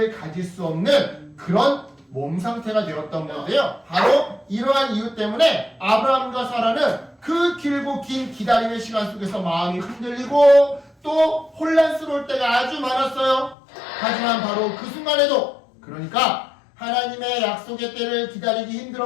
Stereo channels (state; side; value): drops out; right; at 13.6 s